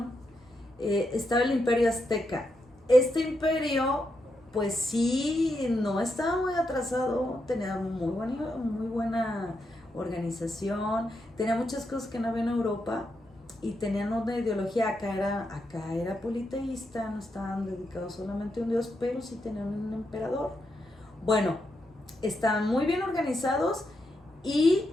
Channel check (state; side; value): normal; both; correlation 0.83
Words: Estaba el Imperio Azteca. Este imperio, pues sí, no estaba muy atrasado, tenía muy buena organización, tenía muchas cosas que no había en Europa, y tenían una ideología. Acá era politeísta, no estaban dedicados solamente a un dios, pero sí tenían un emperador. Bueno, estaban muy bien organizados y